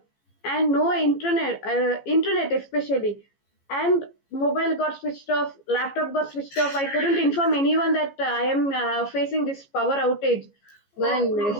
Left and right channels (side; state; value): right; late; 15 ms